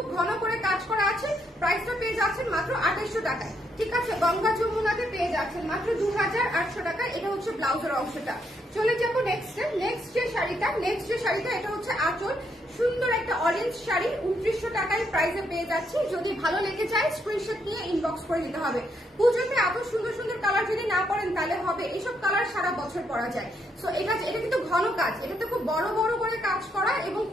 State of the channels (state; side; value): normal; both; correlation 0.76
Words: ঘন করে কাজ করা আছে। প্রাইসটা পেয়ে যাচ্ছেন মাত্র 2800 টাকায়, ঠিক আছে। গঙ্গা যমুনাতে পেয়ে যাচ্ছেন মাত্র 2800 টাকায়। এটা হচ্ছে ব্লাউজের অংশটা। চলে যাবো নেক্সট যে শাড়িটা, এটা হচ্ছে আঁচল, সুন্দর একটা অরেঞ্জ শাড়ি, 2900 টাকায় প্রাইসে পেয়ে যাচ্ছি। যদি ভালো লেগে যায় স্ক্রিনশট নিয়ে ইনবক্স করে দিতে হবে। পুজোতে এত সুন্দর সুন্দর কালার যদি না পরেন তাহলে হবে, এইসব কালার সারা বছর পরা যায়। সো এটা কিন্তু ঘন কাজ, এটাতে খুব বড় বড় করে কাজ করা এবং